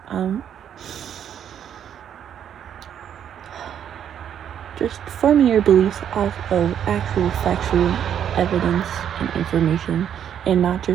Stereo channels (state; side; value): quieter; left; 9.2 dB